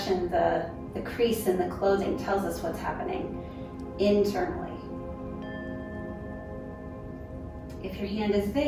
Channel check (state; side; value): identical; both; correlation 1.00